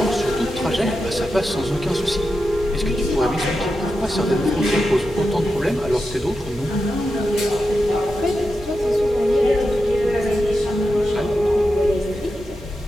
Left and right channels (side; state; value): both; normal; correlation 0.89